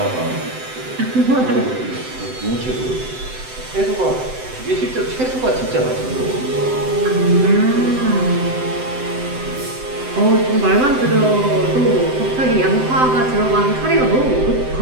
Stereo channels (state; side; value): late; left; 7.8 ms